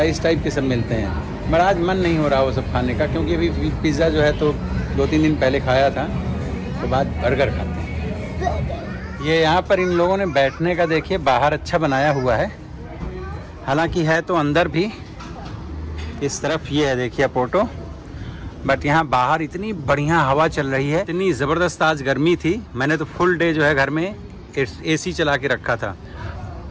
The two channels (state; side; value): identical; both; correlation 1.00